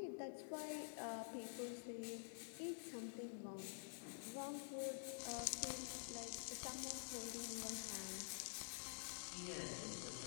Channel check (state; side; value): silent; right; digital silence